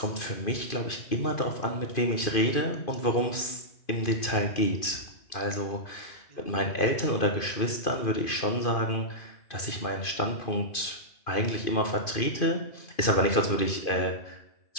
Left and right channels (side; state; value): right; late; 2.5 ms